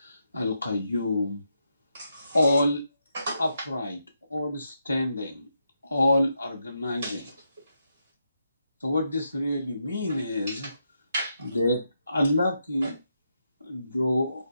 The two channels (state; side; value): inverted; both; correlation -0.82